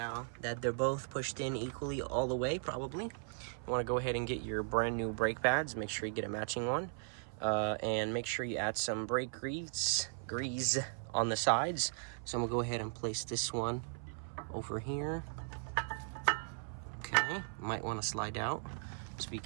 that they're both pushed in equally all the way, probably, you want to go ahead and get your brand new brake pads. Make sure you get a matching one, and make sure you add some brake grease on the sides. So I'm gonna go ahead and place this one over here. Okay, might want to slide out, just be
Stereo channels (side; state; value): left; silent; 53 dB below the other